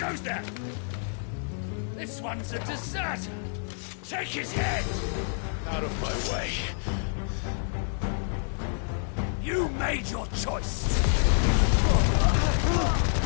goes there? This one's a deserter! Take his head! Out of my way. You made your choice!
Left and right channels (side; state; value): right; silent; 59 dB below the other